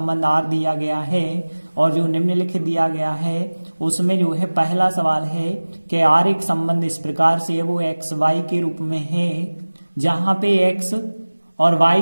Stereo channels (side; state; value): both; inverted; correlation -1.00